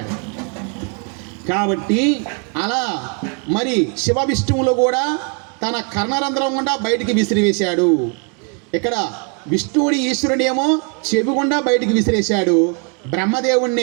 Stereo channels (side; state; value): left; quieter; 36.8 dB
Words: కాబట్టి అలా మరి శివ విష్ణువులు కూడా తన కర్ణరంధ్రం గుండా బయటికి విసిరివేశాడు. ఇక్కడ విష్ణువుడి ఈశ్వరుడేమో చెవి గుండా బయటికి విసిరేశాడు,